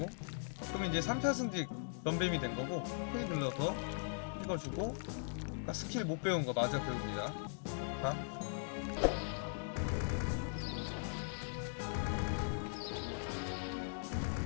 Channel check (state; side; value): silent; right; digital silence